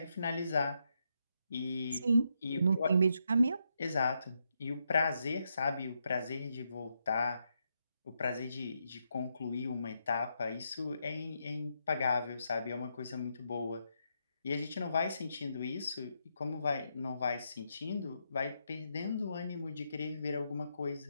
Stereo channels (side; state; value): both; inverted; correlation -0.81